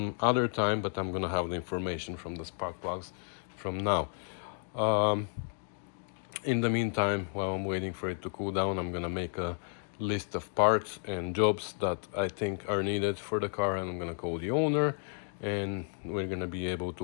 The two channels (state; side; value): silent; right; digital silence